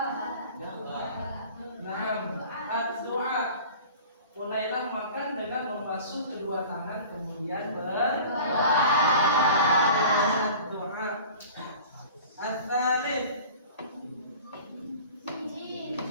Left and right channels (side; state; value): both; inverted; correlation -0.42